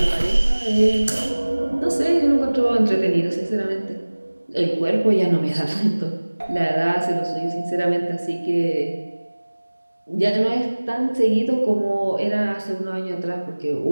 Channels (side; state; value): both; inverted; correlation -1.00